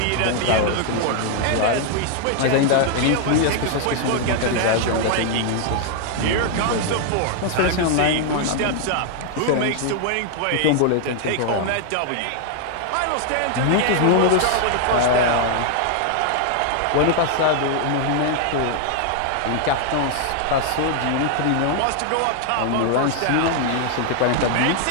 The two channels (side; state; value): both; different; correlation 0.00